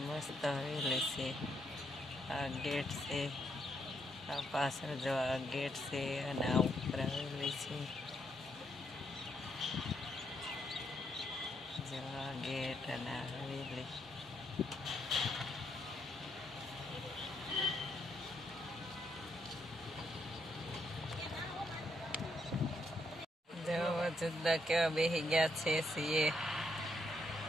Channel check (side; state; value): both; normal; correlation 0.76